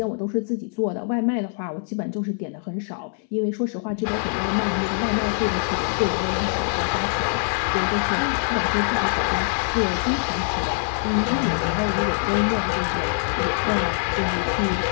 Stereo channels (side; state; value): right; silent; 63 dB below the other